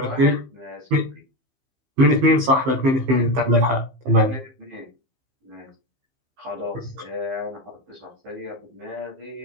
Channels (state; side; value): late; left; 15 ms